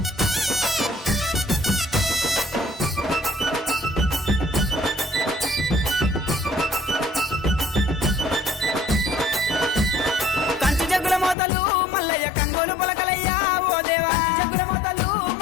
కంచు జగ్గుల మోతలు మల్లయ్య కంగోలు పొలకలయ్యా ఓ దేవా జగ్గుల మోతలు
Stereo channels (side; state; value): right; drops out; at 11.4 s